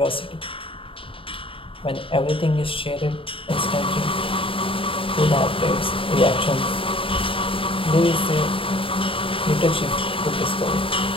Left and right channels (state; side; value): late; right; 0.26 ms